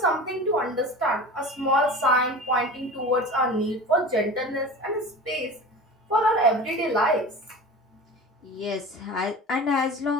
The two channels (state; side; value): normal; both; correlation 0.34